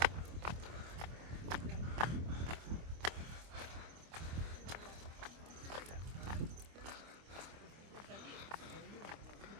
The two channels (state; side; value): late; left; 25 ms